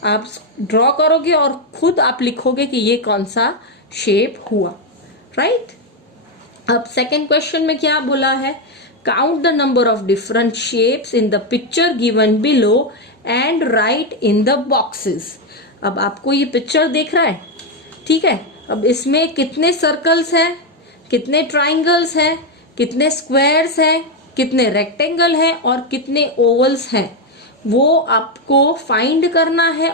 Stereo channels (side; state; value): both; normal; correlation 0.06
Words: आप ड्रॉ करोगे और खुद आप लिखोगे कि ये कौन सा शेप हुआ, राइट? अब सेकेंड क्वेश्चन में क्या बोला है, Count the number of different shapes in the picture given below and write in the boxes. अब आपको ये पिक्चर देख रहा है, ठीक है. अब इसमें कितने सर्कल्स हैं, कितने ट्राइंगल्स हैं, कितने स्क्वायर्स हैं, कितने रेक्टेंगल हैं और कितने ओवल्स हैं, वो आपको फाइंड करना है